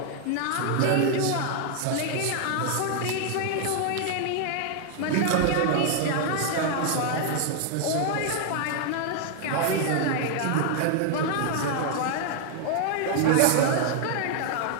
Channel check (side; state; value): both; different; correlation 0.00